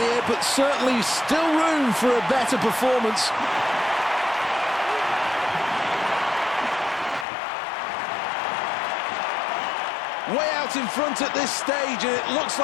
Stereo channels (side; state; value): right; drops out; at 7.2 s